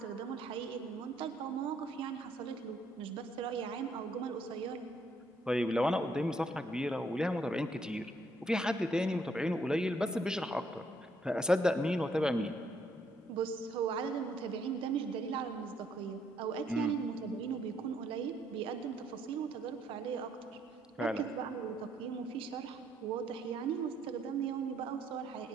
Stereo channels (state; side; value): normal; both; correlation 0.70